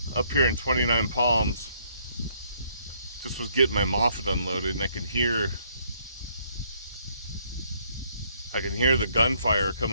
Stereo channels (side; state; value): both; inverted; correlation -0.68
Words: here in Twentynine Palms. Just was getting my Moffett unloaded, and I can hear the gunfire